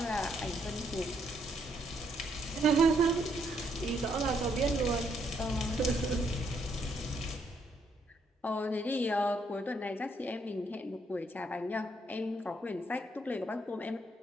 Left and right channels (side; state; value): both; normal; correlation 0.73